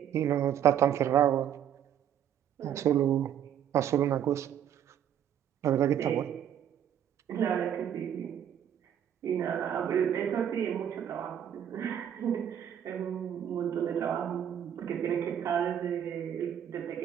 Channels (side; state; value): left; quieter; 9.7 dB